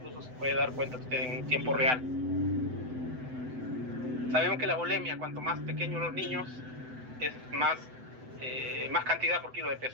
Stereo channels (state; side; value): late; left; 7.9 ms